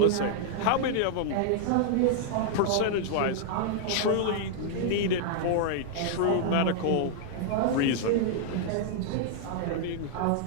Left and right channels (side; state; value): both; different; correlation -0.01